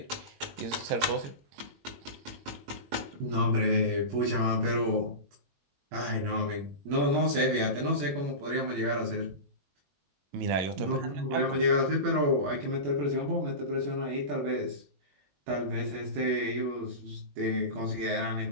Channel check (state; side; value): late; left; 21 ms